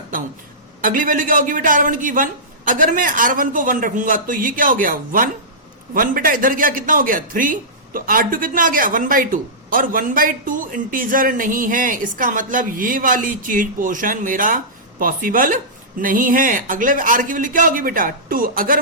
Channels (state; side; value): normal; both; correlation -0.17